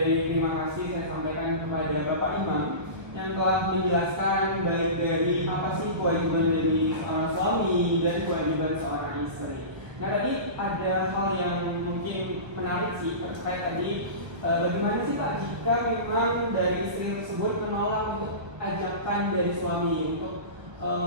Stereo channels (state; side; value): late; left; 1.4 ms